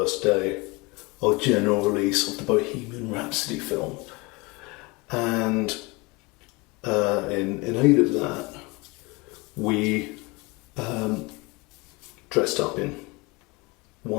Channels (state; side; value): quieter; right; 25.3 dB